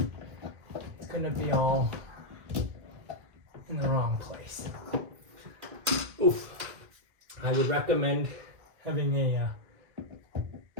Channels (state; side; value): late; left; 2.1 ms